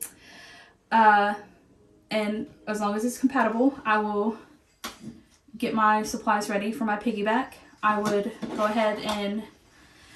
And as long as it's compatible, I will get my supplies ready for my piggyback. I would go ahead and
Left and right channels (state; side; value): identical; both; correlation 1.00